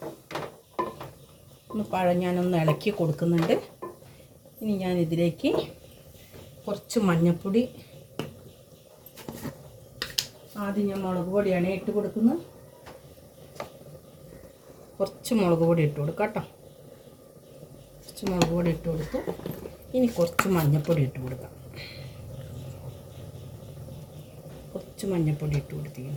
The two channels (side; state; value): both; identical; correlation 1.00